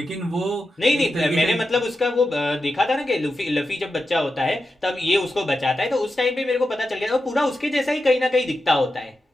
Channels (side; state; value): both; normal; correlation 0.89